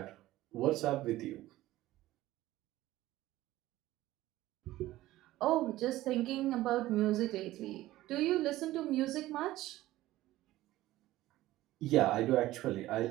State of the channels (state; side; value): quieter; left; 16.1 dB